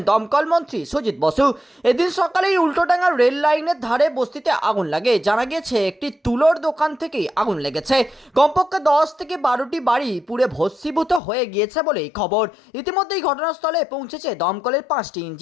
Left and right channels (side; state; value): right; drops out; at 11.2 s